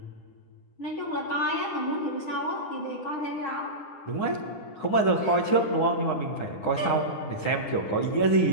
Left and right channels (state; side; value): late; right; 9.9 ms